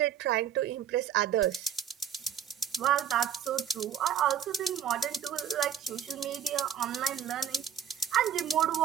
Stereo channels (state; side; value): quieter; left; 9.0 dB